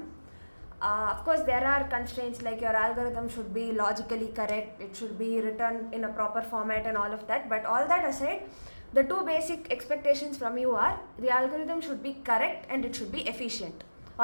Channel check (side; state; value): both; inverted; correlation -1.00